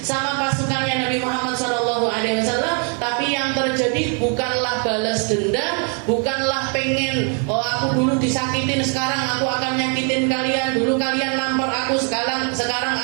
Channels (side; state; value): left; quieter; 39.7 dB